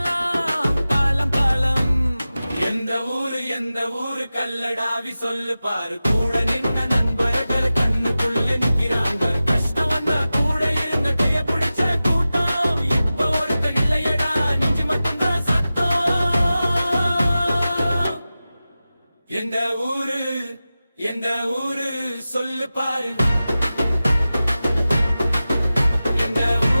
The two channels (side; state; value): both; inverted; correlation -0.95